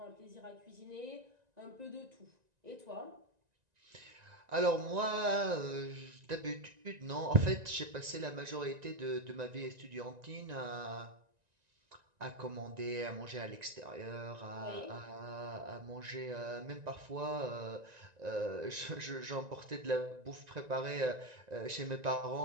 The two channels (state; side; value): late; left; 1.9 ms